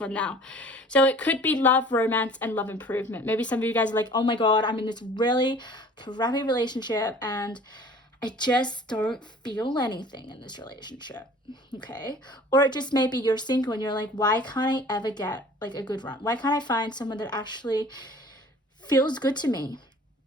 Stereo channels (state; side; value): normal; both; correlation 0.48